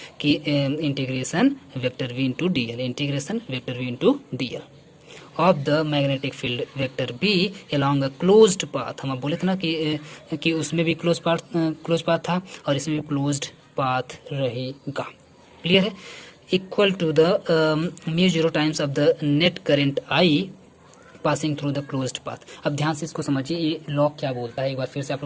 कि integration vector V into D L, integration vector V into D L of the magnetic field vector B along a closed path। हम बोले थे ना कि उसमें भी क्लोज पाथ था और इसमें भी क्लोज्ड पाथ रहेगा। क्लियर है? Equal to the mu zero times of the net current I passing through the closed path. अब ध्यान से इसको समझिए, ये लॉ क्या बोलता है, एक बार फिर से आप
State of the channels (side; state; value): both; identical; correlation 1.00